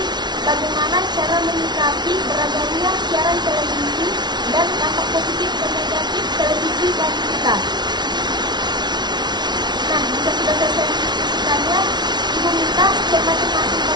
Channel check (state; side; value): late; left; 0.20 ms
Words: bagaimana cara menyikapi beragamnya siaran televisi dan dampak positif dan negatif televisi bagi kita. Nah, jika sudah selesai mendiskusikannya, Ibu minta setiap masing-masing